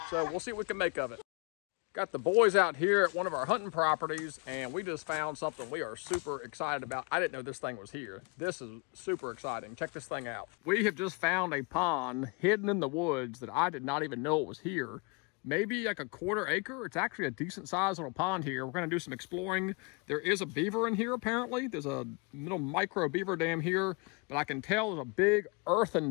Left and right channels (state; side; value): quieter; right; 30.9 dB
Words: So we'll see what we can make of it. Got the boys out here at one of our hunting properties, and we just found something we are super excited about. I didn't know this thing was here. This is super exciting. Check this thing out. We have just found a pond hidden in the woods that I did not even know it was here. Maybe like a 1/4 acre. It's actually a decent sized little pond here. We're going to do some exploring. There is a beaver in here apparently. There's a little micro beaver dam here, but I can tell there's a big